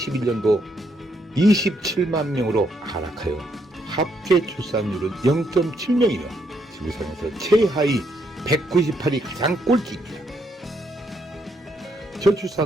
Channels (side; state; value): both; normal; correlation 0.75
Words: 27만 명으로 하락하여 합계 출산율은 0.7명이며 지구상에서 최하위 198이 가장 꼴찌입니다.